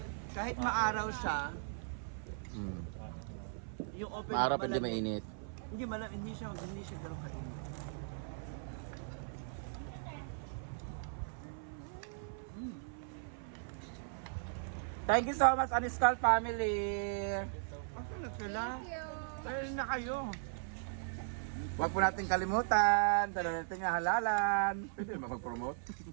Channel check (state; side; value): silent; left; 53 dB below the other